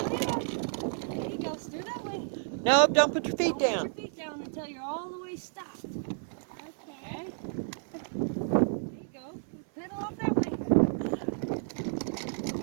down. There you go. Steer that way. No, don't put your feet Don't down. put your feet down until you're all the way stopped. Okay. Okay? There you go. Pedal off that way.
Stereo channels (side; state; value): left; silent; 57 dB below the other